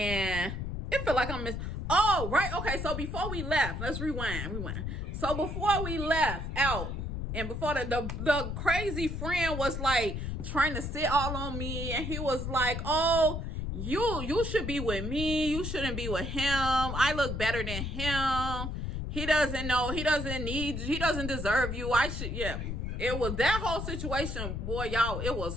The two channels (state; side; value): noise; left; rumble, 4 dB below the sound